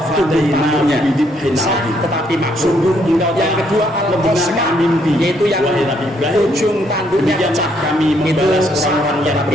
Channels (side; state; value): both; normal; correlation 0.71